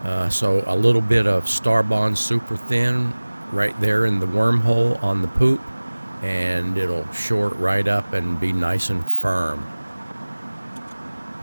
So a little bit of Starbond Super Thin right there in the wormhole on the poop, and it'll shore it right up and be nice and firm.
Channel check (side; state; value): both; inverted; correlation -1.00